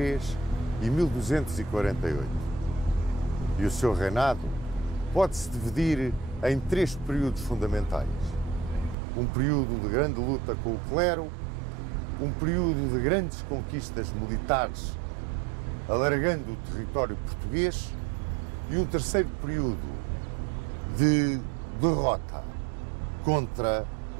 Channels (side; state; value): left; drops out; at 9.0 s